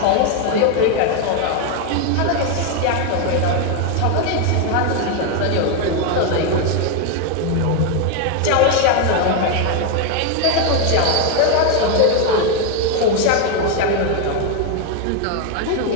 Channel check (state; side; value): different; both; correlation 0.01